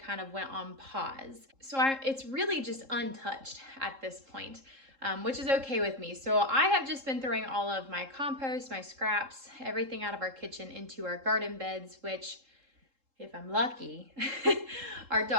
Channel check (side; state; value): left; late; 3.7 ms